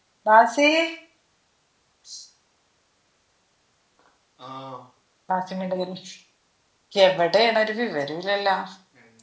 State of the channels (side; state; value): both; identical; correlation 1.00